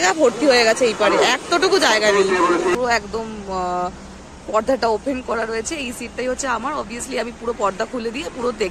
ভর্তি হয়ে গেছে এই পারে, এতটুকু জায়গা নেই। পুরো একদম পর্দাটা ওপেন করা রয়েছে। এই সিটটাই হচ্ছে আমার। অবভিয়াসলি আমি পুরো পর্দা খুলে দিয়ে পুরো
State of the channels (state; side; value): identical; both; correlation 1.00